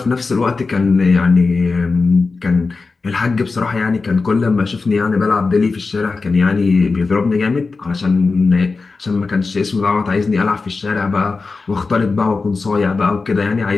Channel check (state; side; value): quieter; right; 4.1 dB